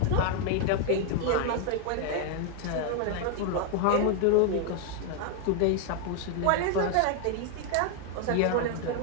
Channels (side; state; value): both; different; correlation 0.00